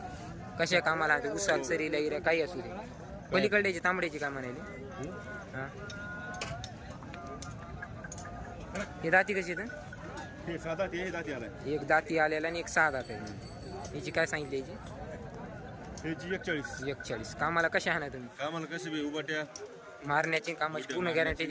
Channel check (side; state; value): both; identical; correlation 1.00